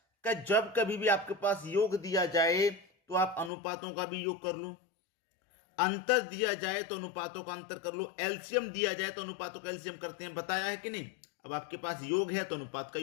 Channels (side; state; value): right; drops out; at 3.5 s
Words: कि जब कभी भी आपके पास योग दिया जाए तो आप अनुपातों का भी योग कर लो, अंतर दिया जाए तो अनुपातों का अंतर कर लो, एलसीएम दिया जाए तो अनुपातों का एलसीएम करते हैं, बताया है कि नहीं। अब आपके पास योग है तो अनुपात का